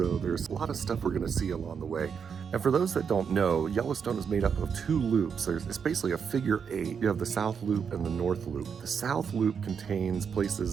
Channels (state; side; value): quieter; left; 6.7 dB